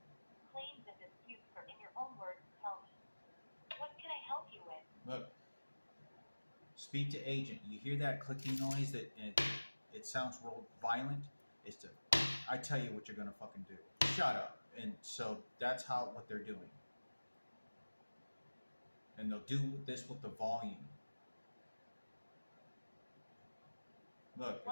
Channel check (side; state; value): both; inverted; correlation -1.00